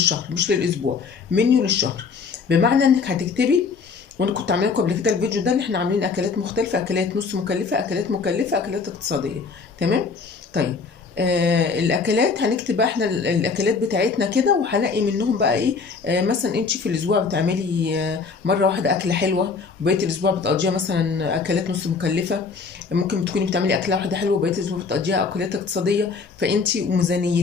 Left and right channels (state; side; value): quieter; right; 5.0 dB